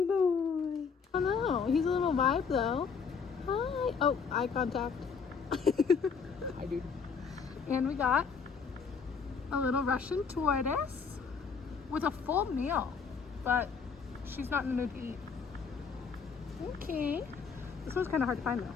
boy. Oh no, he's a little vibe though. Hi. Oh, eye contact. Hi, dude. And we got a little Russian tortoise with a full meal, but she's not in the mood to eat. Okay. This one's kind of hard to find though.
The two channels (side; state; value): right; quieter; 5.7 dB